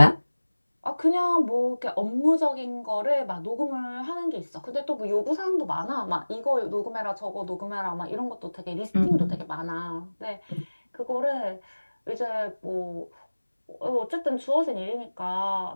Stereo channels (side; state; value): both; inverted; correlation -1.00